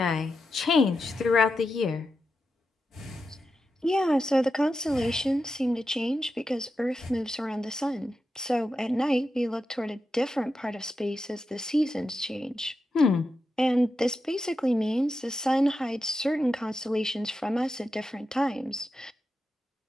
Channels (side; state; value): both; normal; correlation 0.89